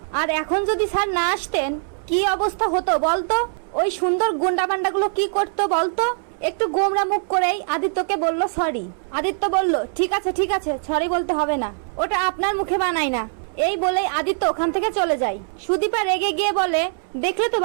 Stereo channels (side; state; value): left; silent; 64 dB below the other